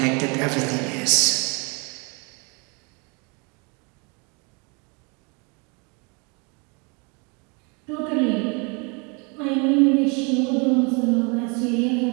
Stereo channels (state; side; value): quieter; left; 32.5 dB